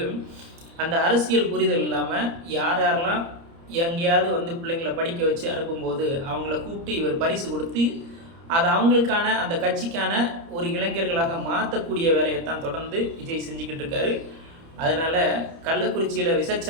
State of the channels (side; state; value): left; late; 30 ms